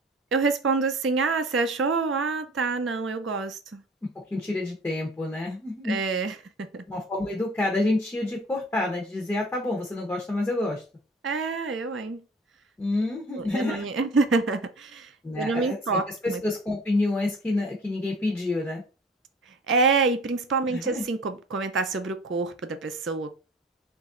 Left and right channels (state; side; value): normal; both; correlation 0.45